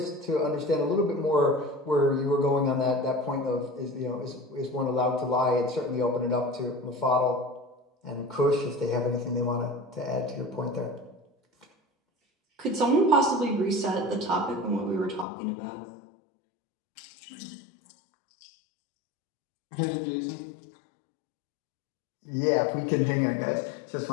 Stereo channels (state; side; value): drops out; right; at 15.2 s